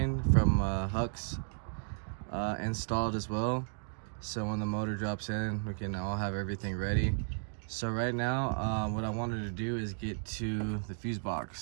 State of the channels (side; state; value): left; silent; digital silence